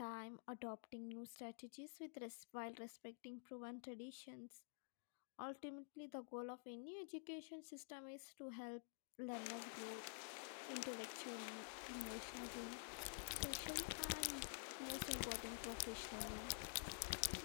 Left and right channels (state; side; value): silent; right; digital silence